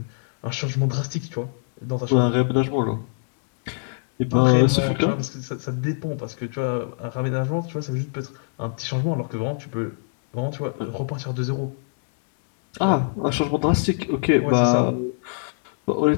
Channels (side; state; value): right; silent; 63 dB below the other